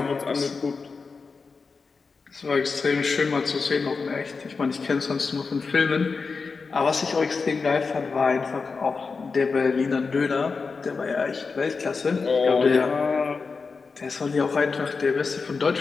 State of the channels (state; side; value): quieter; right; 4.7 dB